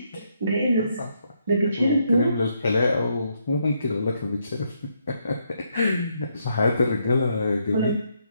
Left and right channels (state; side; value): inverted; both; correlation -0.76